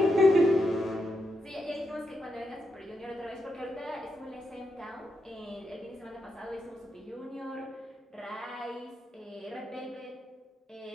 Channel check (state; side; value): normal; both; correlation 0.84